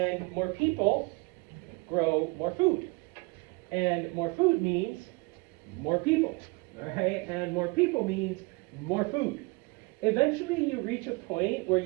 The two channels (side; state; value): left; quieter; 27.4 dB